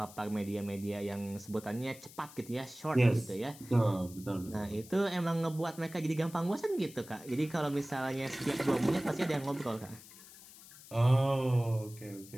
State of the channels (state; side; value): noise; left; hiss, 19 dB below the sound